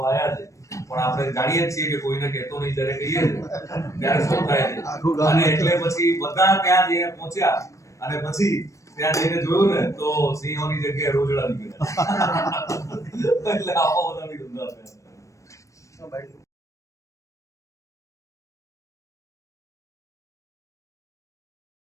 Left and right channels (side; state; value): right; late; 0.15 ms